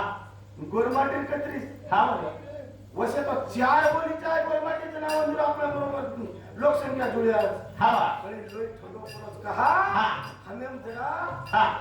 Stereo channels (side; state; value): both; identical; correlation 1.00